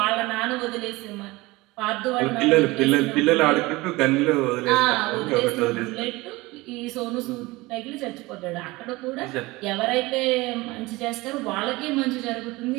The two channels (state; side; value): quieter; left; 21.4 dB